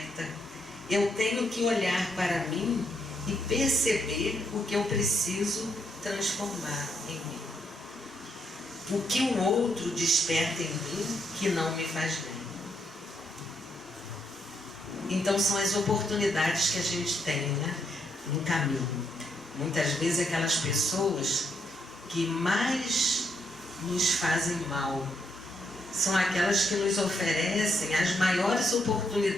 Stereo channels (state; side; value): normal; both; correlation 0.76